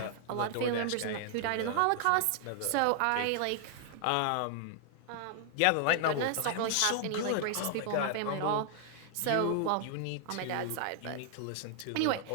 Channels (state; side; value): different; both; correlation 0.00